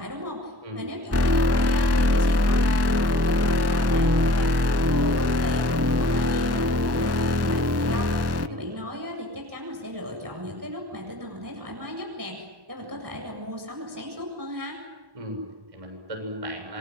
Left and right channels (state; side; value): late; left; 1.1 ms